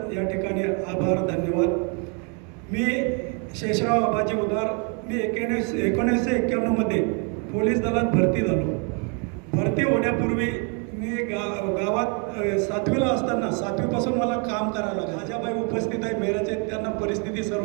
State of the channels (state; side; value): quieter; left; 36.9 dB